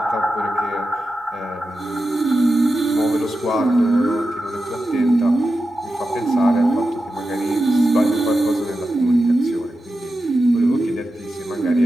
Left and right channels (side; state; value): both; normal; correlation 0.91